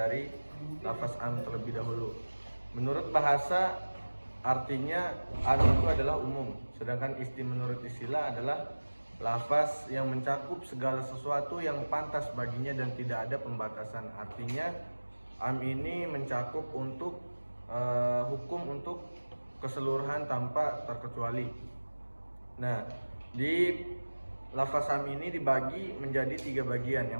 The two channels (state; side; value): inverted; both; correlation -1.00